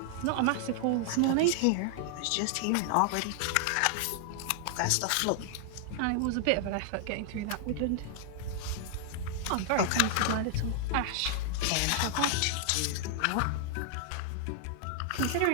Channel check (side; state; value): both; different; correlation -0.01